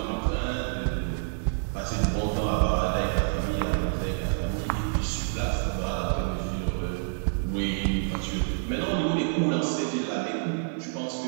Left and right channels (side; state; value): left; silent; 60 dB below the other